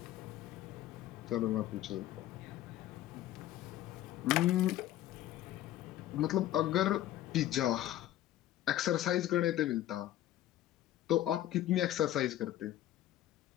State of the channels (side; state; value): right; quieter; 13.3 dB